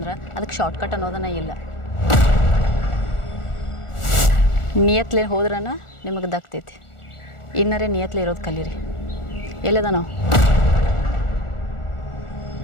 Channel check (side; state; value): right; late; 1.4 ms